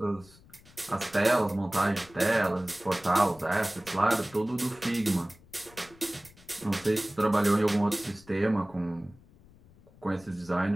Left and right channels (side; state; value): left; noise; rumble, 25 dB below the sound